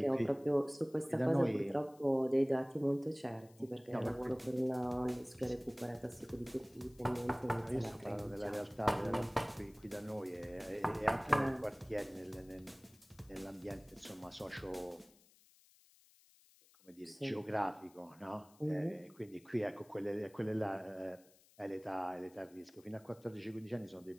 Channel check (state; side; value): noise; left; hiss, 28 dB below the sound